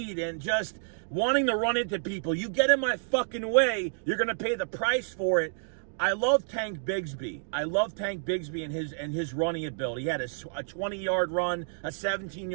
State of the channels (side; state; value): left; silent; digital silence